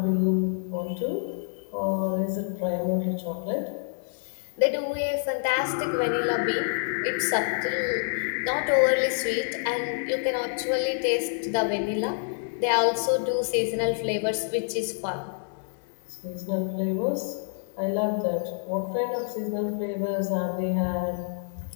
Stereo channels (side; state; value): right; silent; digital silence